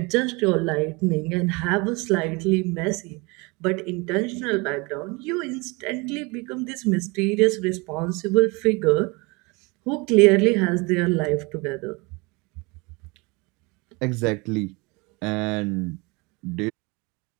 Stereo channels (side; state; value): left; quieter; 27.0 dB